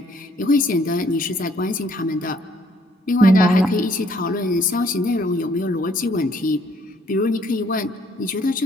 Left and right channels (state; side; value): normal; both; correlation 0.64